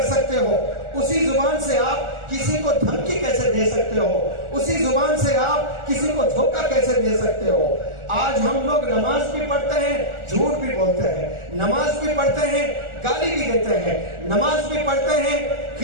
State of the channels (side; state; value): left; late; 1.4 ms